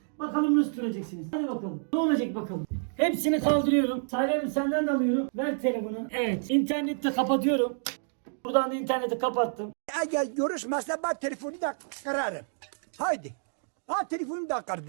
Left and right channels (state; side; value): silent; left; digital silence